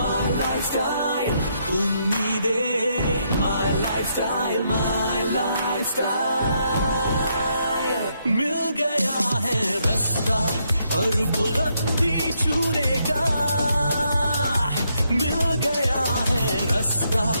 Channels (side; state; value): both; inverted; correlation -0.76